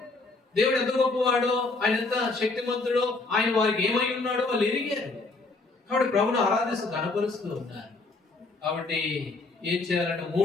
దేవుడు ఎంత గొప్పవాడో, ఆయన ఎంత శక్తిమంతుడో, ఆయన వారికి ఏమై ఉన్నాడో వాళ్ళు ఎరిగారు. కాబట్టి ప్రభుని ఆరాధిస్తూ కనపరుస్తూ ఉన్నారు. కాబట్టి ఏం చేయాలంటే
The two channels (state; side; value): quieter; right; 3.5 dB